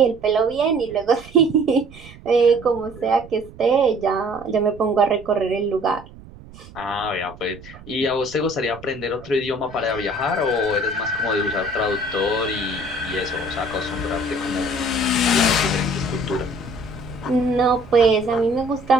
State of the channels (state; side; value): noise; right; rumble, 19 dB below the sound